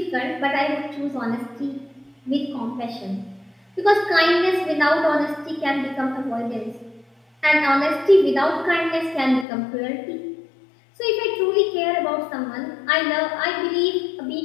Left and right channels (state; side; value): drops out; right; at 9.5 s